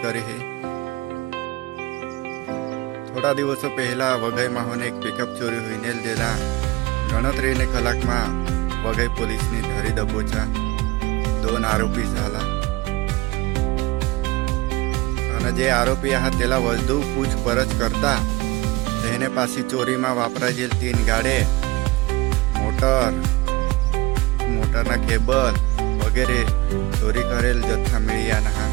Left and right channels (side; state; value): left; quieter; 21.1 dB